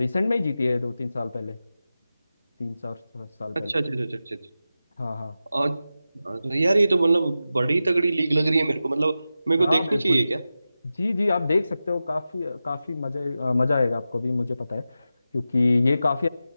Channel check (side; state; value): both; inverted; correlation -0.92